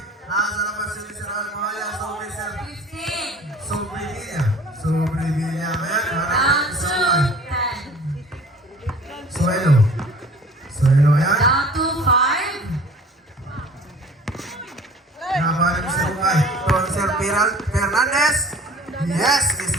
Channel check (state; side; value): normal; both; correlation 0.47